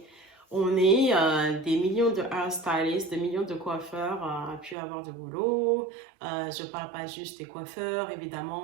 On est des millions de hairstylists, des millions de coiffeurs à pu avoir de boulot. Je ne parle pas juste des coiffeurs,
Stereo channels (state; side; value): drops out; left; at 4.8 s